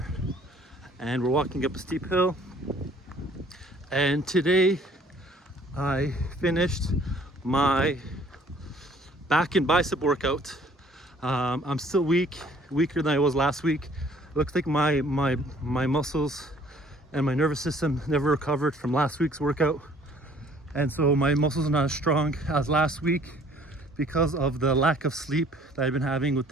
and we're walking up a steep hill. And today I finished my back and bicep workout. I'm still weaker than I was last week. Looks like my muscles and my nervous system never recovered from last week's workout. And so my muscles are not as strong as last week because of the lack of sleep that I've been having with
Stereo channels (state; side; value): normal; both; correlation 0.57